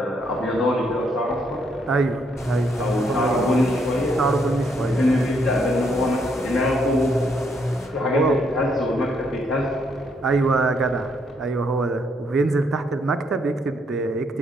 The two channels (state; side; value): normal; both; correlation 0.73